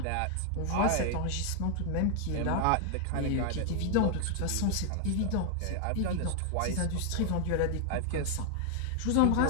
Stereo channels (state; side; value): different; both; correlation 0.00